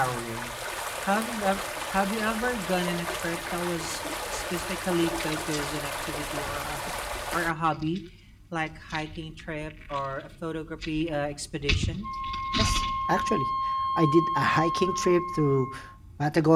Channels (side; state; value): both; identical; correlation 1.00